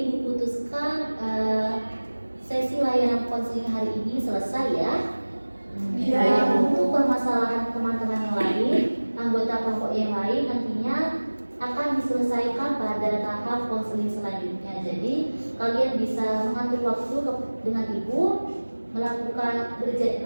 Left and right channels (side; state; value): both; inverted; correlation -1.00